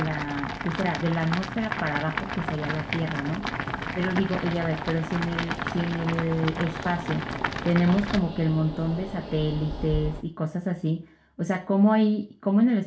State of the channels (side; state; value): both; identical; correlation 1.00